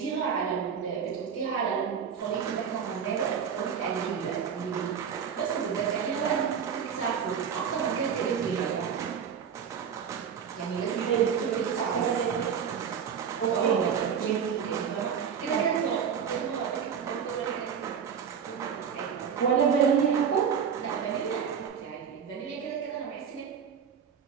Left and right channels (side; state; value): left; quieter; 7.4 dB